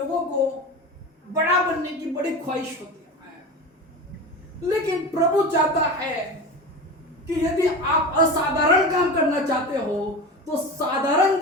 को बड़ा बनने की बड़ी ख्वाहिश होती है। लेकिन प्रभु चाहता है कि यदि आप असाधारण काम करना चाहते हो तो साधारण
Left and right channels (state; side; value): normal; both; correlation 0.28